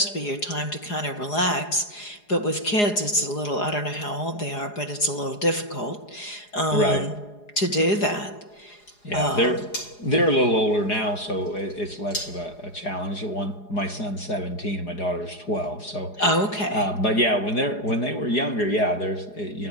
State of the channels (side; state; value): right; late; 4.8 ms